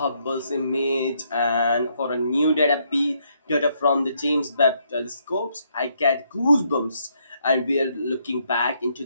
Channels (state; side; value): inverted; both; correlation -0.73